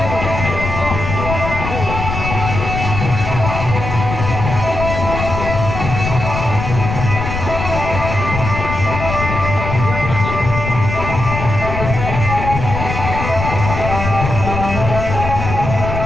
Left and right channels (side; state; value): left; noise; rumble, 4 dB below the sound